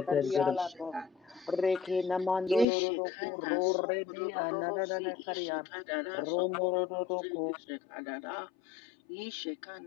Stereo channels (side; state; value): right; drops out; at 2.7 s